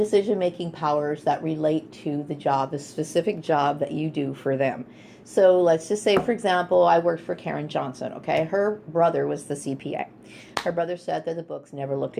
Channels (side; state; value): both; identical; correlation 1.00